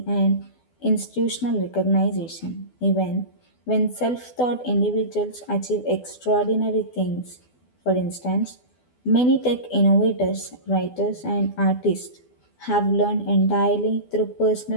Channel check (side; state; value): right; late; 12 ms